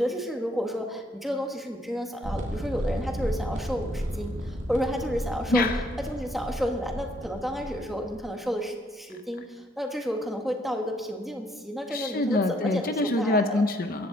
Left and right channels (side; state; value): both; normal; correlation 0.69